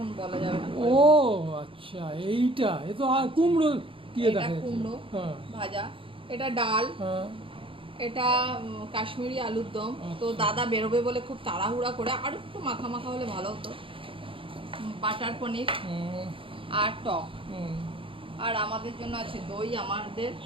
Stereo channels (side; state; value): left; late; 0.25 ms